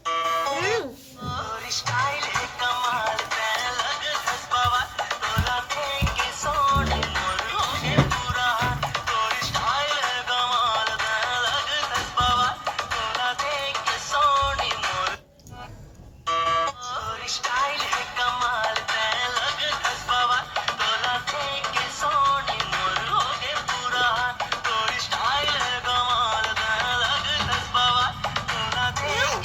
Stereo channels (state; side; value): identical; both; correlation 1.00